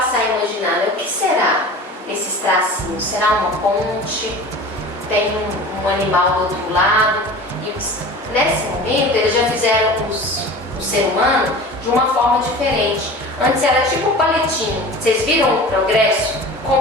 a imaginar, né? O que será esses tracinhos? Será uma ponte? Tem um animal do outro lado? E nesse momento eles já fizeram o ser humano de uma forma diferente. Antes era tipo um palitinho. Vocês viram o progresso?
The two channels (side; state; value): both; normal; correlation 0.37